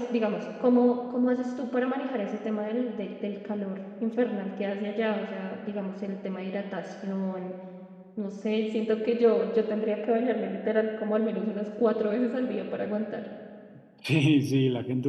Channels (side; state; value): both; identical; correlation 1.00